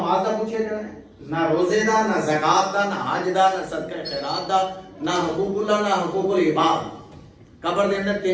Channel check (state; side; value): identical; both; correlation 1.00